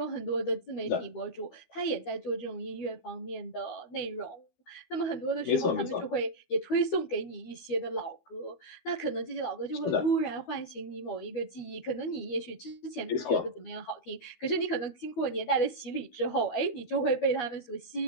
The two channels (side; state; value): right; late; 12 ms